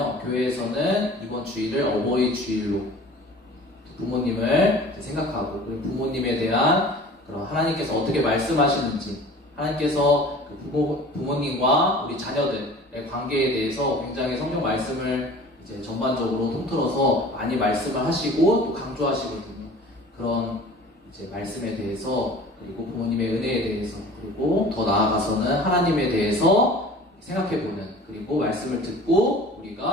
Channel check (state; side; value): normal; both; correlation 0.44